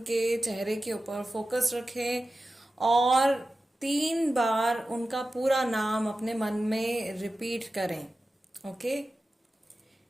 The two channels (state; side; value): normal; both; correlation 0.94